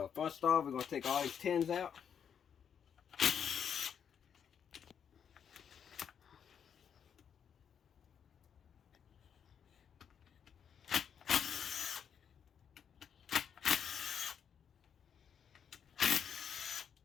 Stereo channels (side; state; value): right; quieter; 7.8 dB